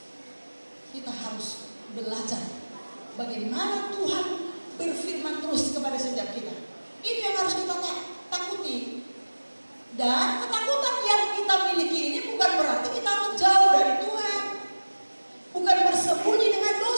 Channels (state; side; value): inverted; both; correlation -1.00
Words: kita harus belajar bagaimana Tuhan berfirman terus kepada setiap kita. Itu yang harus kita takuti. Dan ketakutan yang kita miliki ini bukan berarti kita harus jauh dari Tuhan, bukan bersembunyi dengan